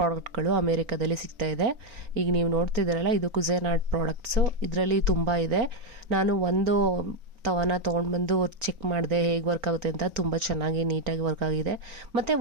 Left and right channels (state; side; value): late; left; 4.4 ms